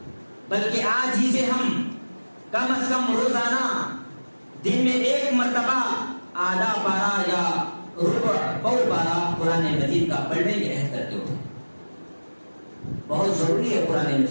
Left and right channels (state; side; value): inverted; both; correlation -1.00